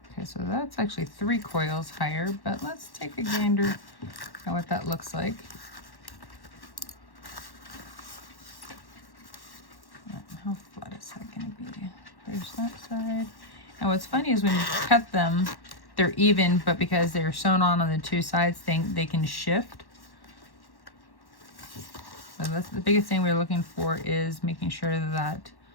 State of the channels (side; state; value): right; late; 1.1 ms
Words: Okay, so that's actually 3 coils higher, but let's take a gander at what that looks like. How flat is that going to be? There's that side. And what's funny is when you cut them, they're even, but because they're sewn on the 2 sides, they can shift. So that's the biggest thing we're looking for, is making sure that